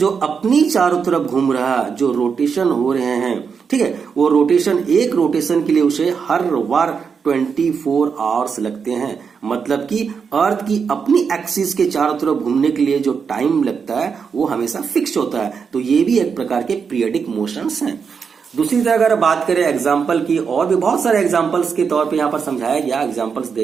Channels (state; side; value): quieter; left; 6.1 dB